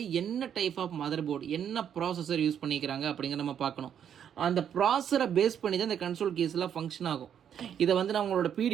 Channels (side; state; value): left; quieter; 8.9 dB